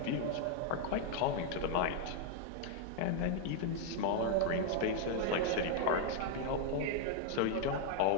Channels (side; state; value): both; different; correlation 0.00